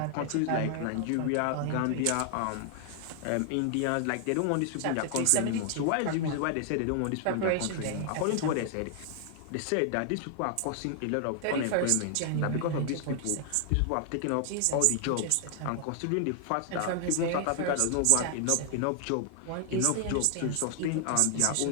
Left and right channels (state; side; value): different; both; correlation 0.00